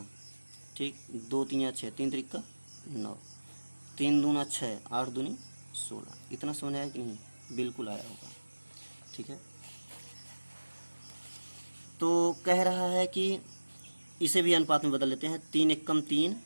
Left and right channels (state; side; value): inverted; both; correlation -1.00